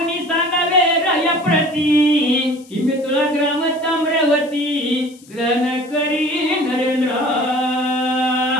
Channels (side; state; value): left; noise; hiss, 25 dB below the sound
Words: सांगावे राया प्रती की मी तुला ग्राम ताम्रवती ग्रहण करी नरेंद्र.